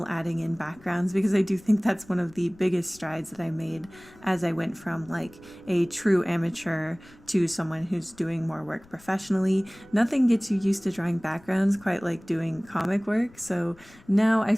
adding in backgrounds, because I do think that's one of the biggest strides that I made as I went from like a true amateur to someone who's doing more work professionally. Nothing gets you used to drawing backgrounds quite like doing comic work, so now I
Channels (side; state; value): left; noise; rumble, 26 dB below the sound